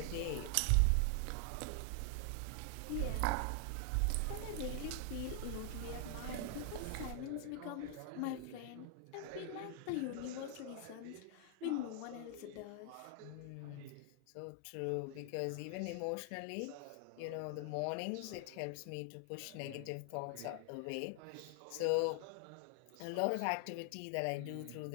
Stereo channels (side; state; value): both; different; correlation 0.00